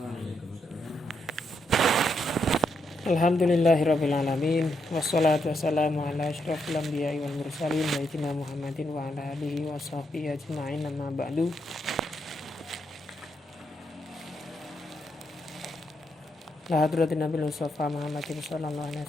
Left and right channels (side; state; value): both; normal; correlation 0.79